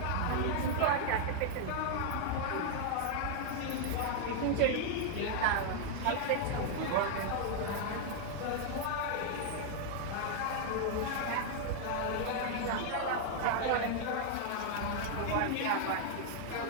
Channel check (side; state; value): both; different; correlation 0.00